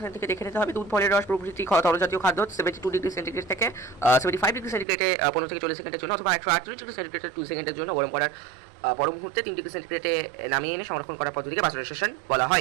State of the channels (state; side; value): drops out; left; at 4.9 s